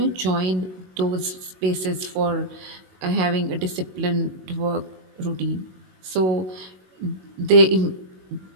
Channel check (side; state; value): left; late; 21 ms